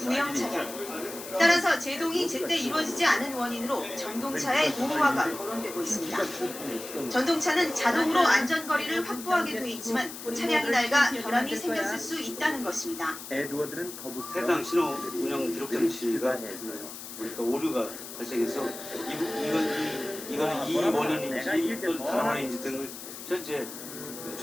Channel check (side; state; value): left; noise; hiss, 11 dB below the sound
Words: 차량. 따라서 제동이 제때 이루어지지 않은 원인으로 전동차의 노후화가 거론되고 있습니다. 전동차는 자동으로 안전거리를 확보하게 돼 있지만 차량이 낡아 결함이 생겼을 수 있다는 것입니다. 에드워드는 거북 해당 신호 운영 기록 장치가 그러니까 오류가 발생해서 이거는 이 원인인지 또는 다른 원인인지 등을 현재